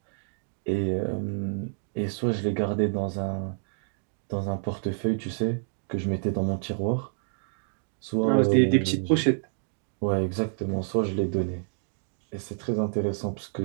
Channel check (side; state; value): left; silent; digital silence